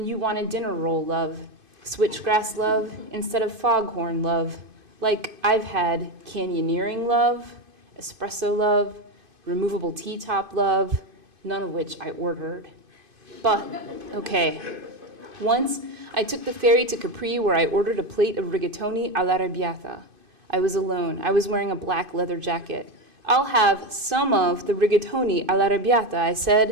you want a dinner roll love. Switchgrass love instead of foghorn love. Like I've had canyoneering love, espresso love, removable T-top love, none of which I ordered. But, okay. Once, I took the ferry to Capri where I ordered a plate of rigatoni all'arrabbiata. I was alone. I was wearing a black leather jacket. I'll have some of the rigatoni all'arrabbiata, I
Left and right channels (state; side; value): late; left; 2.5 ms